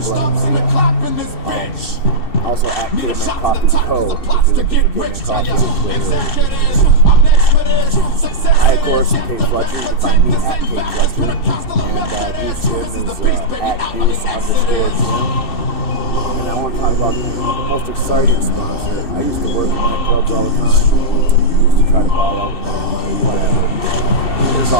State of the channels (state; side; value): late; right; 2.6 ms